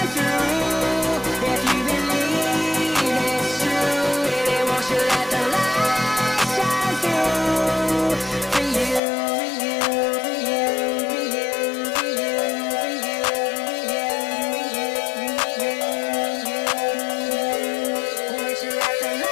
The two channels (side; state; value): right; drops out; at 9.0 s